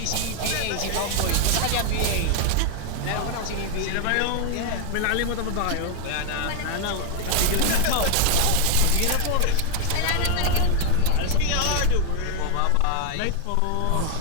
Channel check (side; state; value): both; different; correlation 0.00